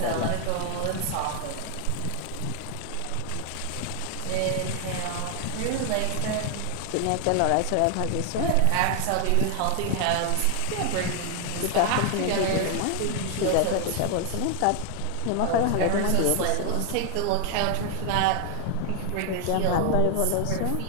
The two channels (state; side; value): different; both; correlation 0.00